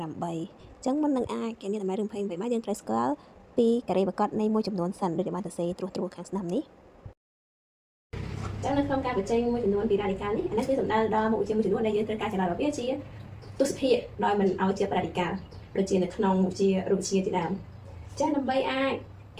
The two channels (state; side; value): identical; both; correlation 1.00